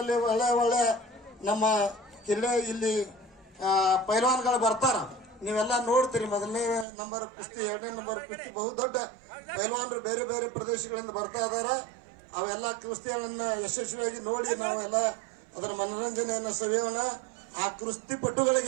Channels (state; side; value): drops out; left; at 6.9 s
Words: ಒಳ್ಳೆ ನಮ್ಮ ಇಲ್ಲಿ ಪೈಲ್ವಾನ್ಗಳು ಬರ್ತಾರ. ನೀವೆಲ್ಲ ನೋಡ್ತೀರಿ. ಮೊದಲನೇ ನಂಬರ್ ಕುಸ್ತಿ, 2ನೇ ನಂಬರ್ ಕುಸ್ತಿ ಬಹುದೊಡ್ಡ ಪೈಲ್ವಾನರು ಬೇರೆ ಬೇರೆ ಪ್ರದೇಶಗಳಿಂದ ಬರ್ತಾ ಇದಾರ. ಅವೆಲ್ಲ ಕುಸ್ತಿಗಳನ್ನ ಯಶಸ್ವಿಯಾಗಿ ನೋಡಿ ನಾವೆಲ್ಲ ಅದರ ಮನೋರಂಜನೆಯನ್ನು ಸವಿಯೋಣ. ಆ ಕುಸ್ತಿ